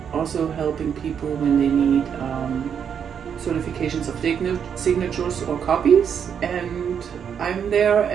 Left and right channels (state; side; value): quieter; left; 7.7 dB